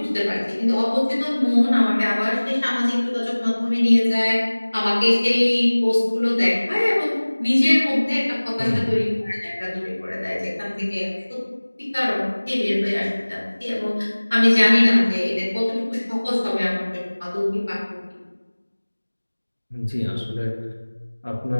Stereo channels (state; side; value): inverted; both; correlation -1.00